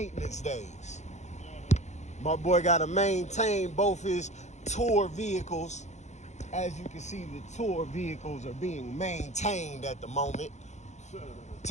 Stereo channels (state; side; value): late; right; 0.33 ms